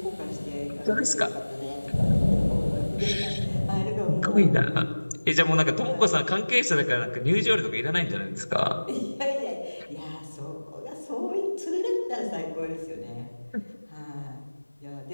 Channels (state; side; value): inverted; both; correlation -1.00